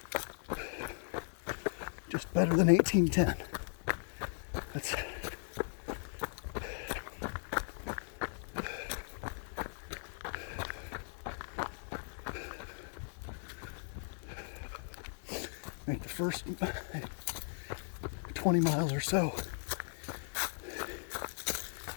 Just better than 18:10. That's make the first 20 miles or so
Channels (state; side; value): silent; right; digital silence